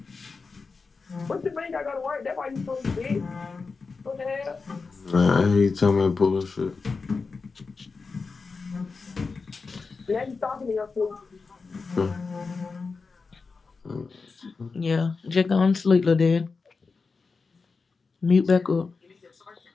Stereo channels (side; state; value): right; quieter; 4.5 dB